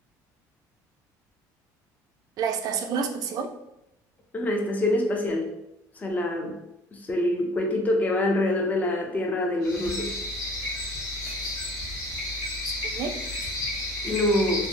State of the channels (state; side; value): normal; both; correlation 0.49